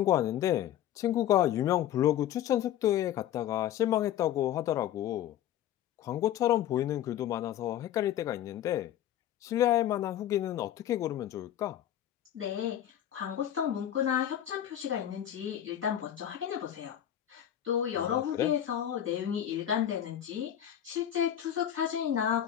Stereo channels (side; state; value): right; quieter; 11.2 dB